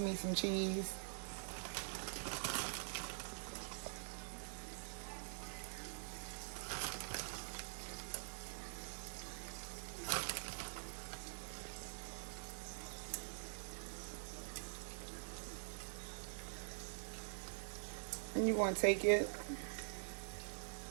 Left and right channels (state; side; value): silent; left; digital silence